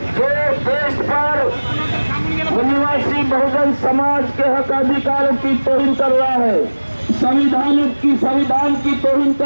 जो देश पर आदिवासी बहुजन समाज के हक अधिकारों की तोहिन कर रहा है, संविधान की तोहिन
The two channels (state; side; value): inverted; both; correlation -1.00